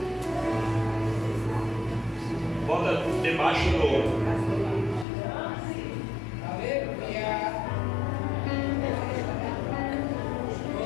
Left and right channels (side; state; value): right; drops out; at 5.1 s